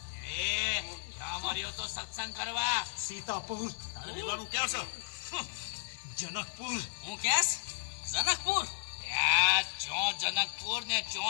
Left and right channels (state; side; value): silent; right; 55 dB below the other